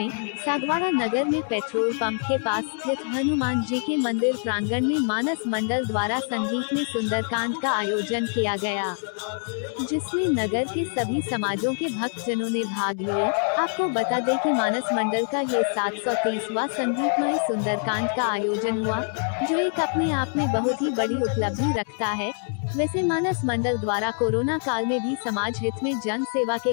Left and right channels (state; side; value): silent; right; 55 dB below the other